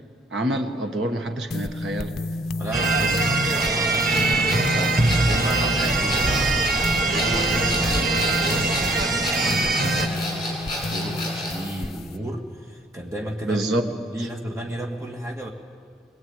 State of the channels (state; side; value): normal; both; correlation 0.62